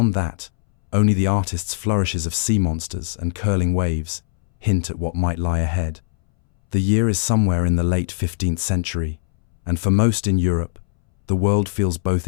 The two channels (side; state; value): right; silent; 64 dB below the other